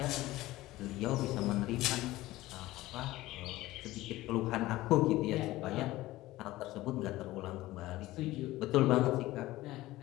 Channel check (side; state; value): right; quieter; 17.4 dB